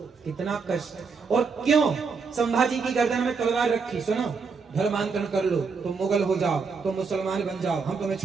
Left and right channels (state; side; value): quieter; left; 5.1 dB